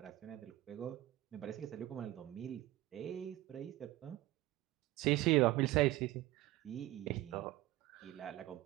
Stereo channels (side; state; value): left; quieter; 16.5 dB